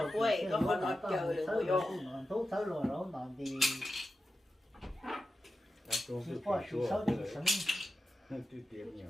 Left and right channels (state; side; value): normal; both; correlation 0.91